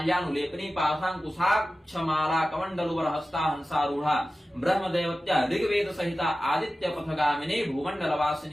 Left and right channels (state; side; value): normal; both; correlation 0.95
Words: पाशांकुशाक्षमाला कमंडलुवर हस्ता हंसारूढ़ा ब्रह्मदेवत्या ऋग्वेद सहिता आदित्य पथगामिनी